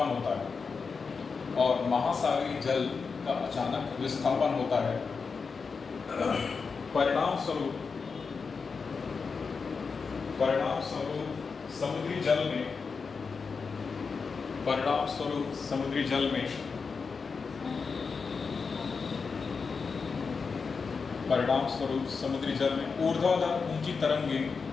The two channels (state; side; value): quieter; right; 5.1 dB